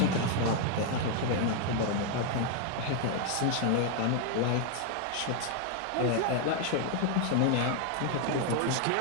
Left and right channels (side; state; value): both; different; correlation 0.00